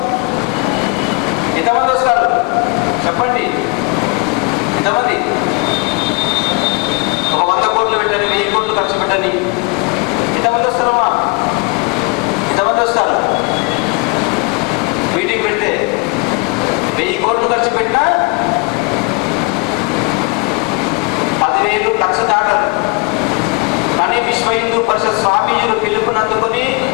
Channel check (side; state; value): right; quieter; 29.3 dB